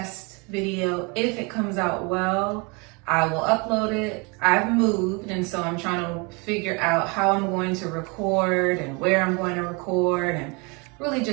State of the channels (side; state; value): left; quieter; 30.2 dB